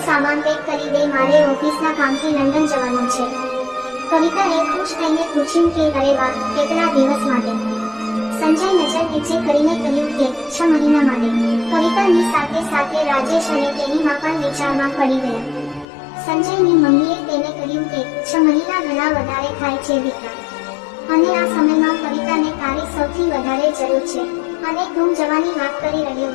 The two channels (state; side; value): drops out; right; at 15.9 s